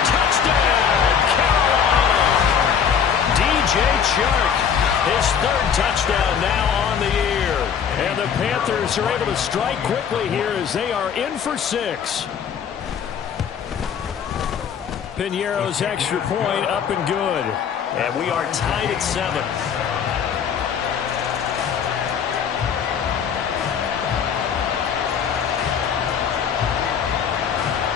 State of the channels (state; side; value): quieter; right; 7.6 dB